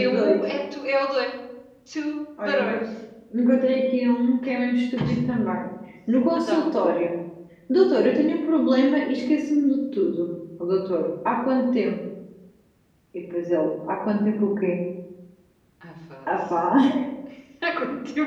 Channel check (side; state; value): both; identical; correlation 1.00